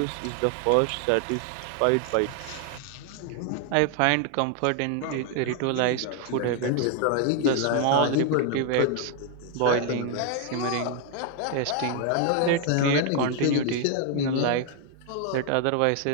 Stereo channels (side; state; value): both; different; correlation 0.00